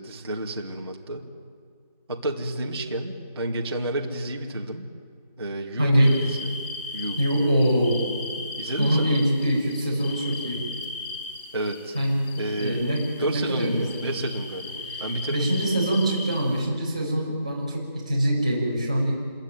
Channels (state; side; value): inverted; both; correlation -0.79